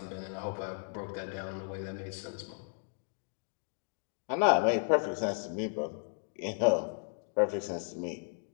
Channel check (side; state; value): right; silent; 55 dB below the other